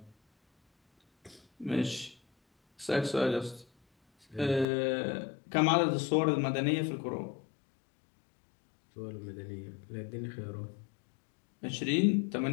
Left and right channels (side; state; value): right; drops out; at 4.7 s